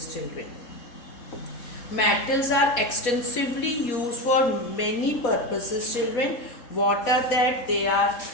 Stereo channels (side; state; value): right; late; 4.2 ms